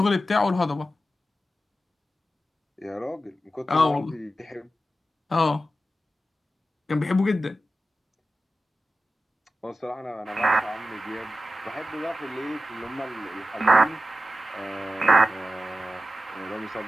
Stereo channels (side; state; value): both; normal; correlation 0.92